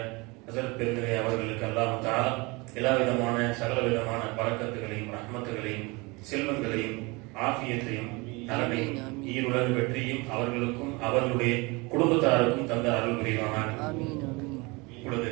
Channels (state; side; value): quieter; left; 25.9 dB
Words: ஹஸரத் பெருந்தகை அவர்களுக்கு அல்லாஹ் தஆலா எல்லா விதமான சகல விதமான பரக்கத்துகளையும் ரஹ்மத்துகளையும் செல்வங்களையும் ஆஃபியத்தையும் நலனையும் ஈருலக வெற்றியும் அவர்களுக்கும் அவர்களுடைய குடும்பத்தாருக்கும் தந்த அருள் புரிவானாக. இப்பொழுது